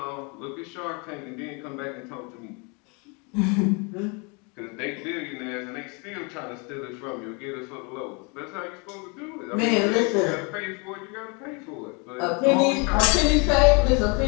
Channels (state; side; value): quieter; right; 32.2 dB